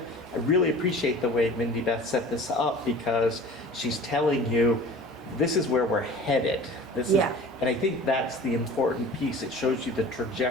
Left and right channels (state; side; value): normal; both; correlation 0.42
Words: really appreciate the way Mindy Beth set this up, because she's telling you, this is where we're headed. Yeah. And I think that's the important piece. It shows you the